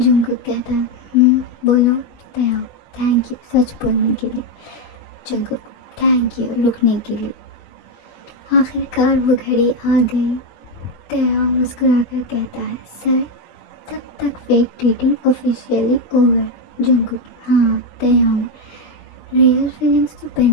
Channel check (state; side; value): late; right; 20 ms